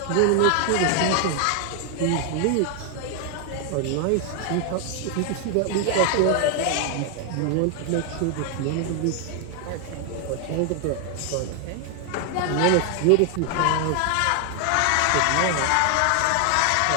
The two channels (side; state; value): both; different; correlation 0.00